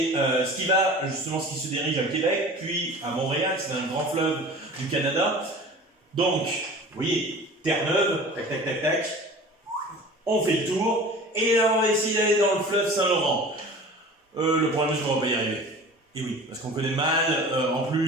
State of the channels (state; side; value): normal; both; correlation 0.40